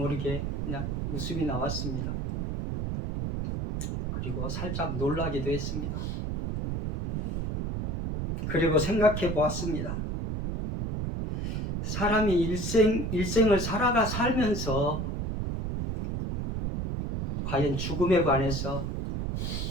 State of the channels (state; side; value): noise; right; rumble, 3 dB below the sound